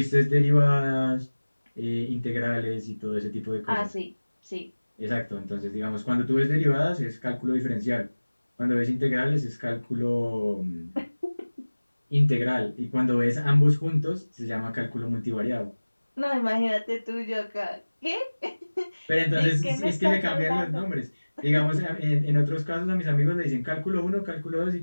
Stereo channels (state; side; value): inverted; both; correlation -1.00